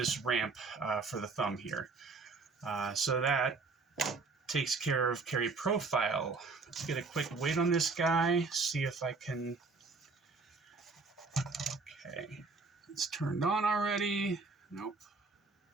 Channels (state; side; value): quieter; left; 4.1 dB